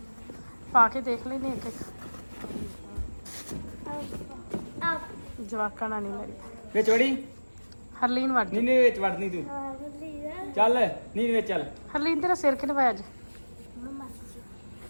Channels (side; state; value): both; inverted; correlation -1.00